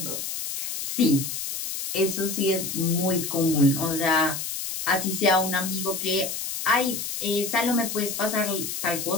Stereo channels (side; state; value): left; noise; hiss, 5 dB below the sound